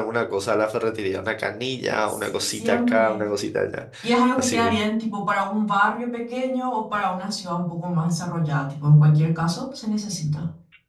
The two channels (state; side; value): identical; both; correlation 1.00